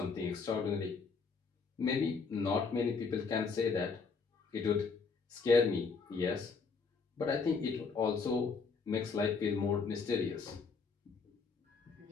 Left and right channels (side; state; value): right; quieter; 5.0 dB